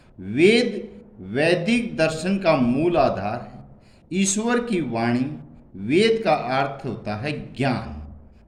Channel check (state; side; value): identical; both; correlation 1.00